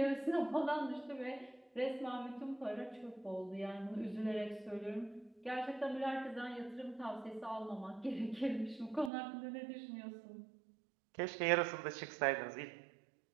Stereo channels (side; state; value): left; drops out; at 9.1 s